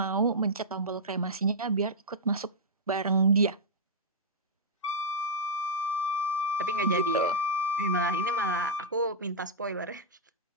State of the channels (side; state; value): both; normal; correlation -0.07